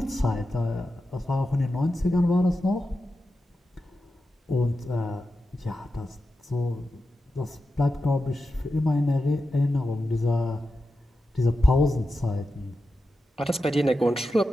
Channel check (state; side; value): normal; both; correlation 0.90